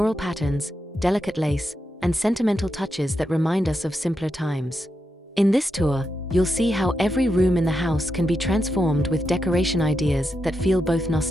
patterns, delicate lace, and sentimental touches that remind us of simpler times. In this tour, you'll see how every room in the house can be transformed with decoration ideas that feel both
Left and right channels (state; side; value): normal; both; correlation 0.85